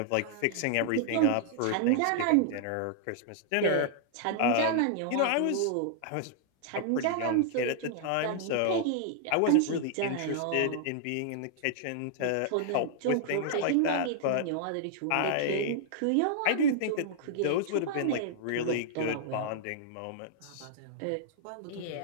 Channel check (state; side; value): different; both; correlation -0.01